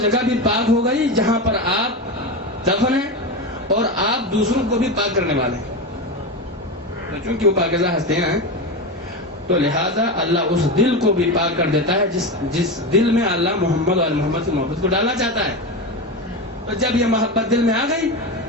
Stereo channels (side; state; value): both; normal; correlation 0.19